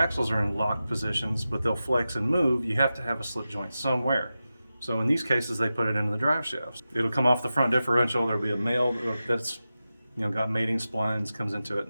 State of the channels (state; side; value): inverted; both; correlation -0.93